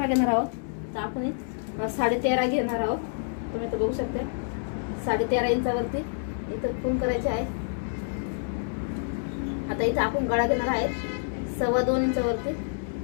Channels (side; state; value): right; silent; 60 dB below the other